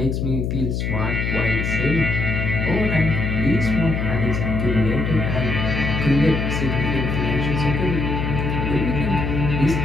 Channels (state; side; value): noise; left; hum, 1 dB below the sound